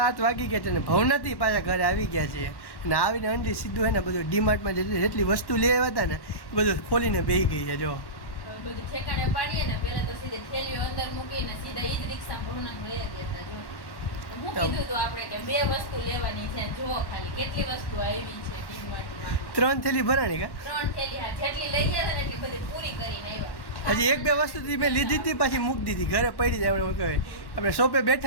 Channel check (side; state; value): right; late; 1.1 ms